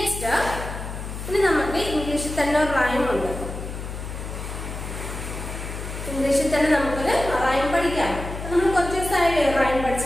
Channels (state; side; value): noise; left; hum, 8 dB below the sound